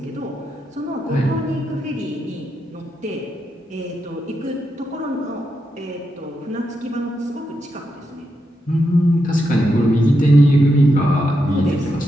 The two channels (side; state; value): both; normal; correlation 0.84